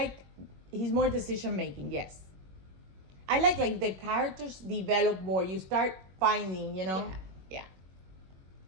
he's more decision making. Yes, I like the characters develop more. You start finding, you know. Yeah.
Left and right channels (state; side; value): late; left; 21 ms